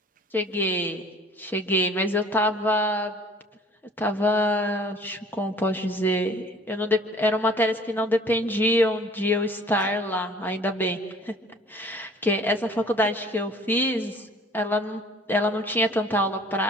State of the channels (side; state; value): both; normal; correlation 0.51